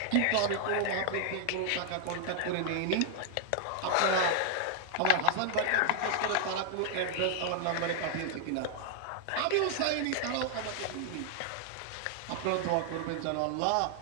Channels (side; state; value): both; different; correlation -0.01